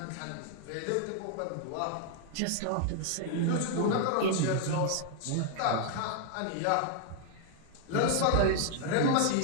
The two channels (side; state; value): both; different; correlation -0.01